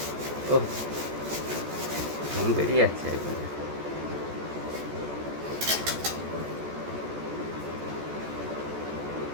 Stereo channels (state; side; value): late; left; 14 ms